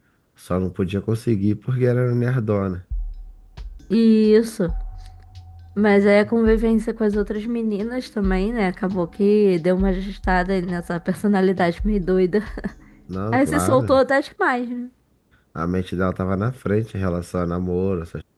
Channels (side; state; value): both; identical; correlation 1.00